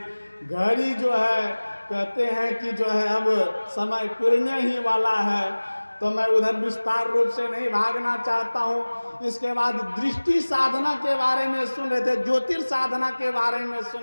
घड़ी जो है, कहते हैं कि जो है अब समय पुरने ही वाला है, तो मैं उधर विस्तार रूप से नहीं भागना चाहता हूँ। इसके बाद दृष्टि साधना के बारे में सुन रहे थे, ज्योतिर् साधना के बारे में सुन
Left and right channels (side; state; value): both; inverted; correlation -1.00